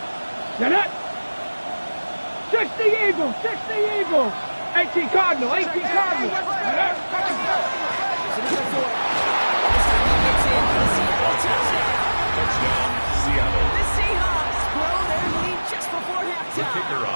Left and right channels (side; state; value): both; inverted; correlation -1.00